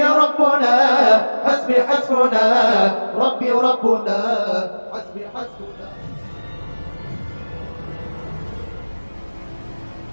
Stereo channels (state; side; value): inverted; both; correlation -1.00